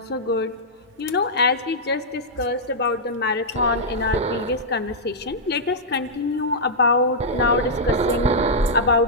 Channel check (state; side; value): normal; both; correlation -0.09